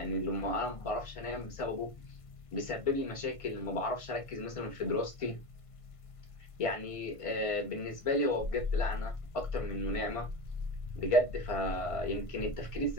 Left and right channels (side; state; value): right; late; 1.5 ms